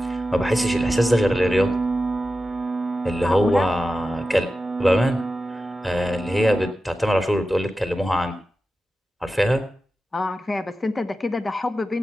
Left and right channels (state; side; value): normal; both; correlation 0.93